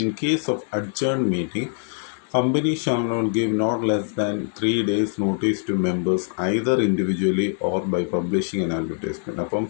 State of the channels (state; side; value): silent; right; 58 dB below the other